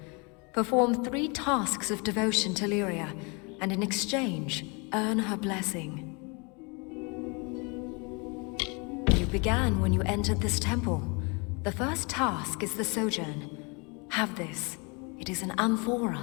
Perform 3 tasks of devotion to Lyria, and in exchange, earn her blessing. You began when you entered this temple. The first task is the Sojourn. Have this. It is an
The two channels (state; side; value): quieter; right; 31.1 dB